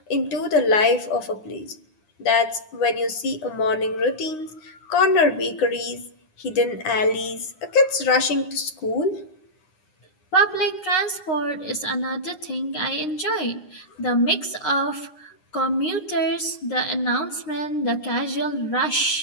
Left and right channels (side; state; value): right; late; 9.7 ms